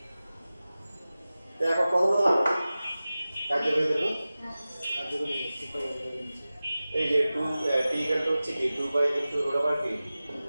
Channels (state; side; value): inverted; both; correlation -0.96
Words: এখন প্রথমত কার্যকরী দেব এই যে 2 t ইকুয়াল টু হচ্ছে কি 2 বাই ইনটু রুট ওভার কি